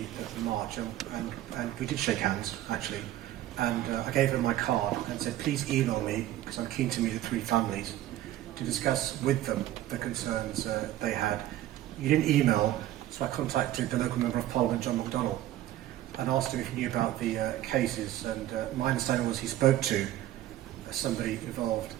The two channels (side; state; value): left; quieter; 13.9 dB